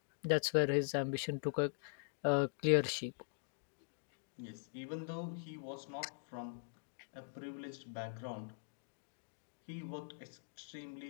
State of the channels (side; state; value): right; silent; digital silence